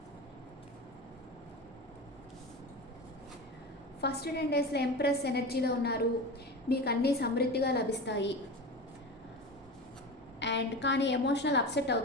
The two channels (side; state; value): both; normal; correlation 0.27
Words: First 10 daysలో ఎంప్రెస్ ఎనర్జీలో ఉన్నారు. మీకు అన్నీ సమృద్ధిగా లభిస్తాయి. అండ్ కానీ ఎమోషనల్ అప్సెట్